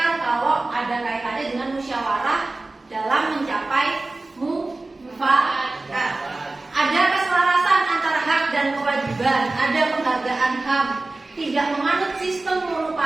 kalau ada kaitannya dengan musyawarah dalam mencapai mufakat. Ada keselarasan antara hak dan kewajiban, ada penghargaan HAM, tidak menganut sistem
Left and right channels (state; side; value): quieter; left; 3.1 dB